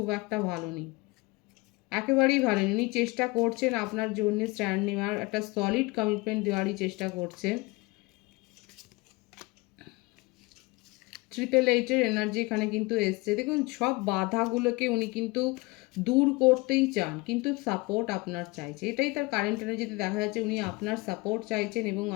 একটা ভালো নেই, একেবারেই ভালো নেই। উনি চেষ্টা করছেন আপনার জন্য স্ট্যান্ড নেওয়ার, একটা সলিড কমিটমেন্ট দেওয়ারই চেষ্টা করছেন। 888 এনার্জি এখানে কিন্তু এসছে। দেখুন সব বাধাগুলোকে উনি কিন্তু দূর করতেই চান, কিন্তু সাপোর্ট আপনার চাইছে, এটাই তার কারেন্ট এনার্জিতে দেখা যাচ্ছে। উনি আপনার সাপোর্ট চাইছেন এবং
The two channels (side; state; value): right; quieter; 24.0 dB